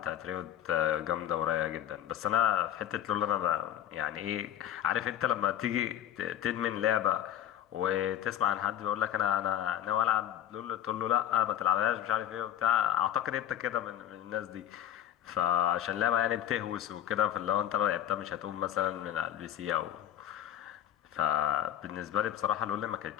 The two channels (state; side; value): quieter; right; 11.1 dB